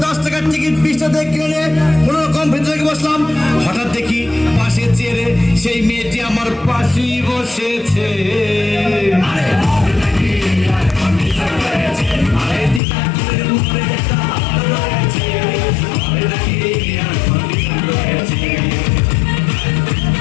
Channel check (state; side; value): drops out; right; at 12.8 s